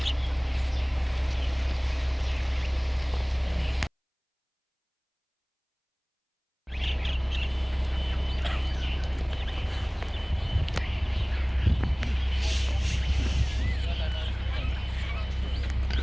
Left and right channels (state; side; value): identical; both; correlation 1.00